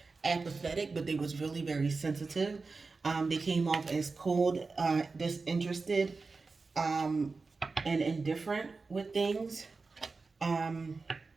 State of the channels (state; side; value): quieter; left; 4.1 dB